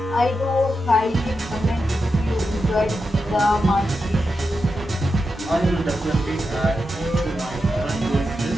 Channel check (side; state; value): both; normal; correlation 0.88